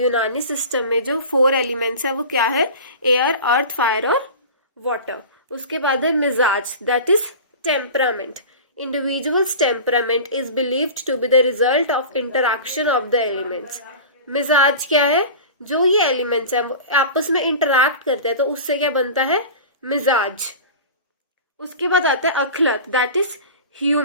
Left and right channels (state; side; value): inverted; both; correlation -0.34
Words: यूनानी सिस्टम में जो 4 एलिमेंट्स है वो क्या है? एयर, अर्थ, फायर और वाटर। उसके बाद है मिजाज, that is temperament. Individual's temperament is believed to be the result of interaction of the elements. मिजाज क्या है? जो ये एलिमेंट्स हैं वो आपस में इंटरैक्ट करते हैं तो उससे क्या बनता है? मिजाज। उसके बाद आता है अखलत, that is